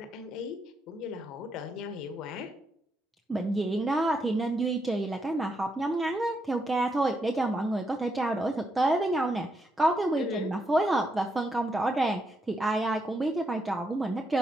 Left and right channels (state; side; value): normal; both; correlation 0.80